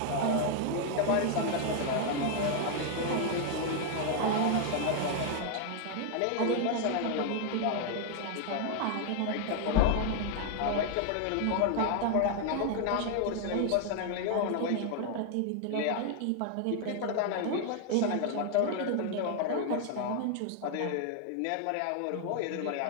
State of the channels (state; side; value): different; both; correlation 0.00